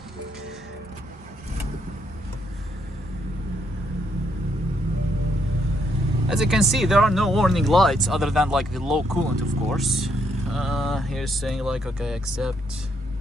As you can see, there are no warning lights other than like the low coolant, of course. Here's saying like, okay, accept.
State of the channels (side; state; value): both; normal; correlation 0.75